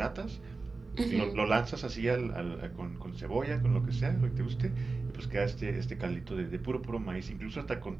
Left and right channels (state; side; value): quieter; left; 3.8 dB